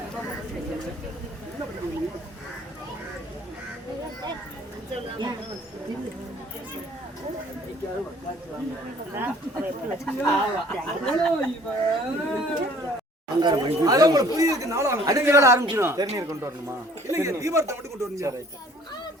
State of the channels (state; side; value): normal; both; correlation 0.55